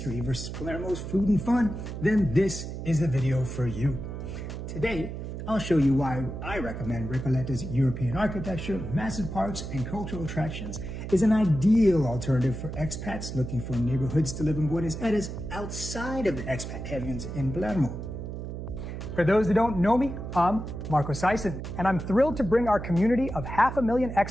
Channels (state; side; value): noise; right; hum, 7 dB below the sound